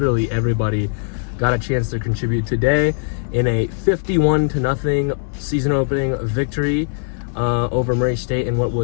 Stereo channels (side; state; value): right; silent; digital silence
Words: everybody got a chance to contribute today in a 51-0 season opening victory over Murray State in what